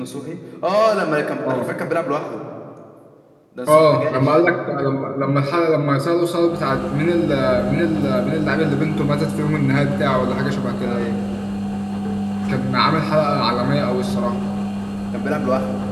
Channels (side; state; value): both; identical; correlation 1.00